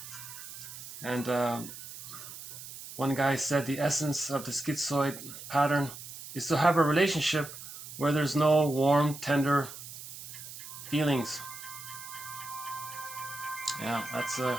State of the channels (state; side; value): noise; right; hiss, 12 dB below the sound